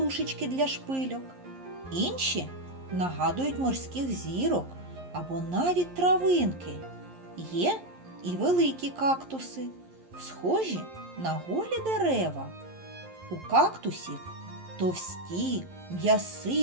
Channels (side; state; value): left; late; 11 ms